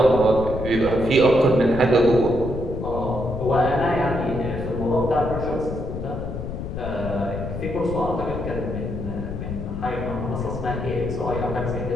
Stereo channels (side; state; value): left; noise; rumble, 6 dB below the sound